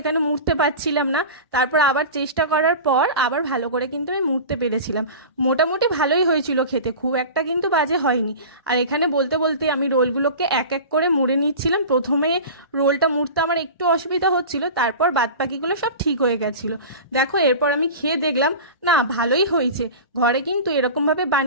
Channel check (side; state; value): both; inverted; correlation -0.33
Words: মুড়তে পারছিলাম না, তারপর আবার চেষ্টা করার পর আবার ভালো করে কিন্তু আমি মুড়তে পেরেছিলাম। মোটামুটি ভালোই হয়েছিল খেতে, খুব একটা কিন্তু বাজে হয়নি। আর এখানে বলতে বলতে আমি রোলগুলোকে এক এক করে মুড়ে নিচ্ছিলাম। প্রথমে রোলটা মুড়তে আমার একটু অসুবিধা হচ্ছিল, তারপর বাদবাকিগুলো সব ঠিক হয়ে গেছিলো। দেখো, এরপর আমি খেয়ে দেখলাম না, ভালোই হয়েছে। ঘরে কিন্তু এরকমভাবে